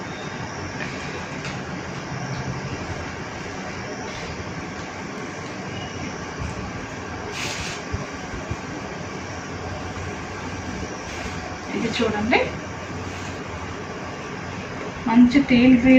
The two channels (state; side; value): identical; both; correlation 1.00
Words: ఇది చూడండి, మంచి టీల్